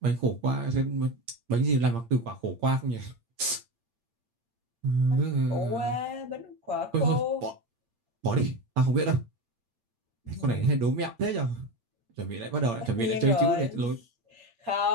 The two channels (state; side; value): late; left; 8.7 ms